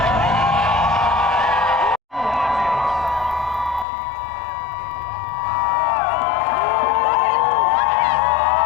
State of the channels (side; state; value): right; drops out; at 3.9 s